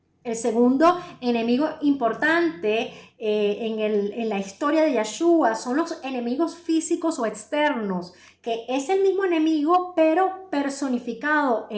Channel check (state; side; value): identical; both; correlation 1.00